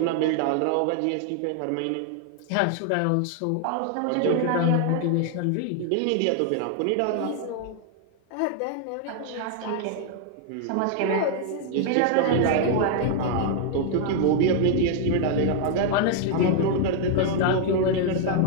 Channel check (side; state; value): both; different; correlation 0.00